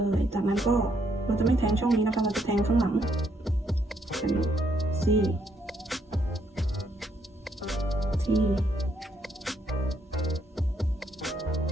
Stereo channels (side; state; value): both; normal; correlation 0.72